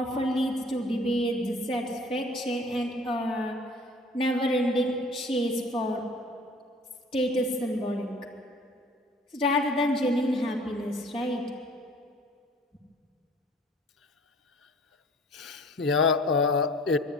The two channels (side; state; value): both; normal; correlation 0.50